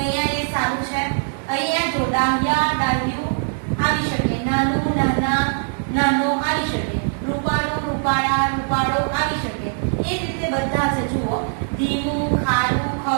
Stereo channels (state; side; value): silent; left; digital silence